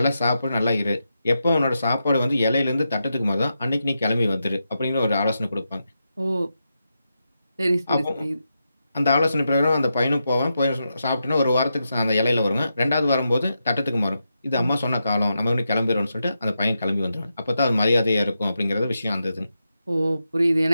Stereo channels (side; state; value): both; inverted; correlation -0.87